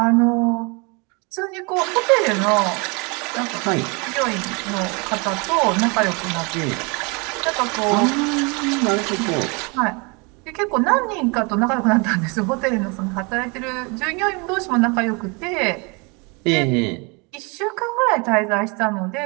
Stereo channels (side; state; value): left; quieter; 30.3 dB